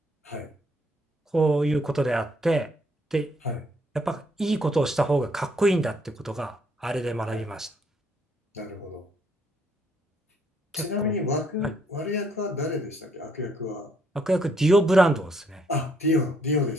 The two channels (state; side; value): normal; both; correlation 0.69